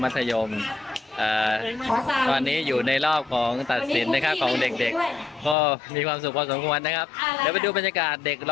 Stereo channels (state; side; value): drops out; right; at 5.6 s